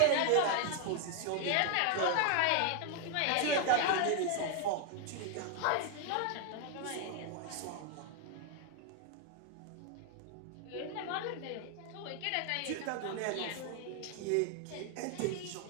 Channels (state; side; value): different; both; correlation 0.00